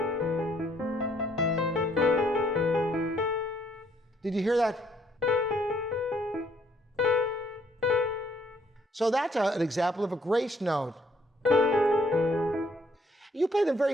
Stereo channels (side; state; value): both; normal; correlation 0.66